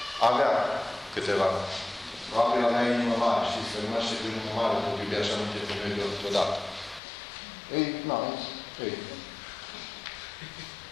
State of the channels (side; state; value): right; drops out; at 7.0 s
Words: Avea câteva. Probabil avea inimă mare. Știți că nu știu cu inimă mare, tot iubea așa nu te femeie deodată.